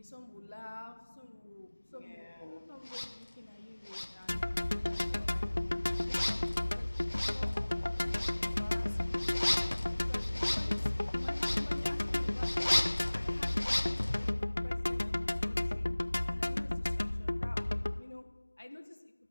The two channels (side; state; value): both; inverted; correlation -1.00